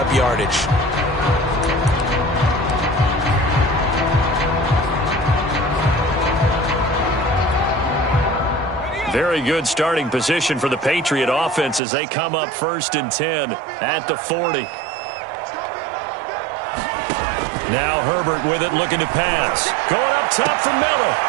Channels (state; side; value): drops out; left; at 11.8 s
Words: yardage. Very good starting position for the Patriot offense as they come up 1st and 10 at the 40. Now Herbert with it, looking to pass. Going up top for Miller.